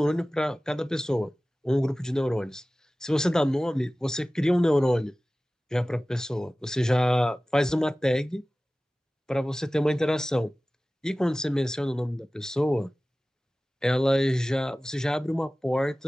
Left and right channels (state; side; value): normal; both; correlation 0.97